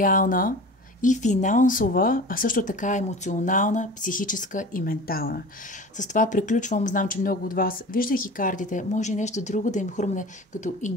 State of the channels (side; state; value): both; normal; correlation 0.37